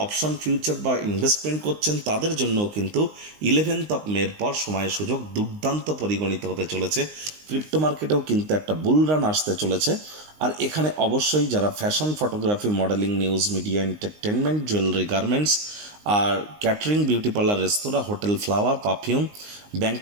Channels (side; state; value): left; late; 19 ms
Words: অপশন ফিউচার বা ইনভেস্টমেন্ট করছেন, তাদের জন্য কিন্তু 11th মের পর সময় সুযোগ দুর্দান্ত পরিগণিত হতে চলেছে। ক্রিপ্টো মার্কেটেও কিন্তু একটা বুল রান আসতে চলেছে। আর এখানে অবশ্যই যারা fashion, photography, modelling, news media, entertainment, jewellery, garments, আর ক্যাটারিং, বিউটি পার্লার, রেস্তোরাঁ, hotel, flower, perfume,